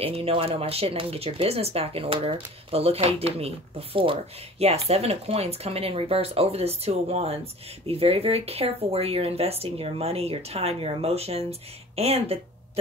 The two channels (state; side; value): normal; both; correlation 0.43